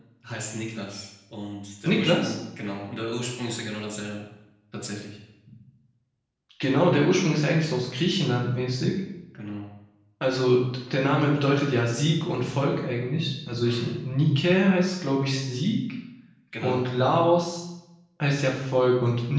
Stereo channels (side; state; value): both; identical; correlation 1.00